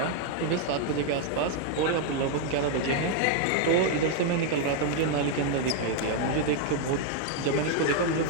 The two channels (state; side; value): different; both; correlation 0.00